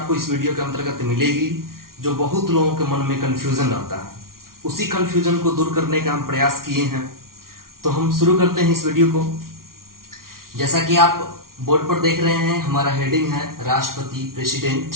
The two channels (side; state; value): left; late; 0.93 ms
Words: इस वीडियो के अंतर्गत मिलेगी जो बहुत लोगों के मन में कंफ्यूजन रहता है। उसी कंफ्यूजन को दूर करने का हम प्रयास किए हैं। तो हम शुरू करते हैं इस वीडियो को। जैसा कि आप बोर्ड पर देख रहे हैं, हमारा हेडिंग है राष्ट्रपति, प्रेसिडेंट।